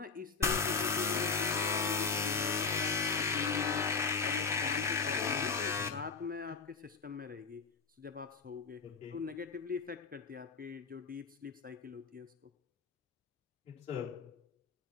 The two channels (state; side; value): quieter; right; 5.1 dB